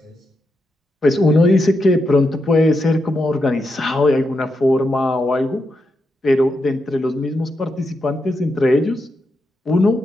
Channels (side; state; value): both; normal; correlation 0.85